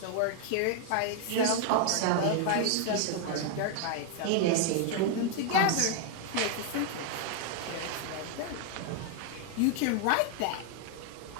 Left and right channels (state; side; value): different; both; correlation 0.00